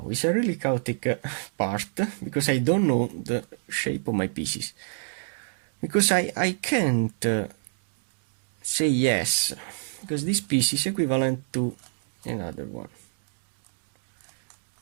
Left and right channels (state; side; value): silent; left; digital silence